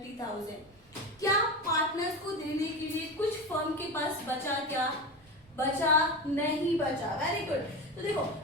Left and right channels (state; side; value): normal; both; correlation 0.23